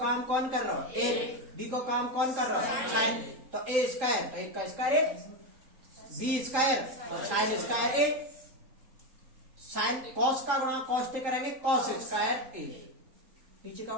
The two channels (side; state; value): left; late; 3.7 ms